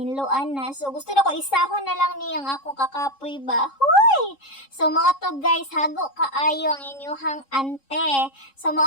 na. So gusto na ko isahon na lang ni ang akong kakapoy ba. Hoy! So mga to guys, hago kaayo ang inyuhang ante. So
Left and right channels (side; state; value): right; late; 3.7 ms